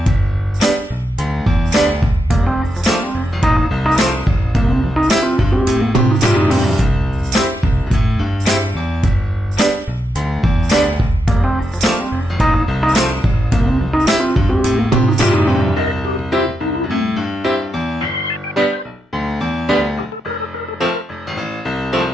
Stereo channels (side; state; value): both; normal; correlation 0.85